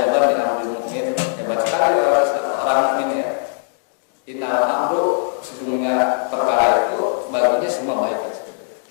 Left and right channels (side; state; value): right; silent; digital silence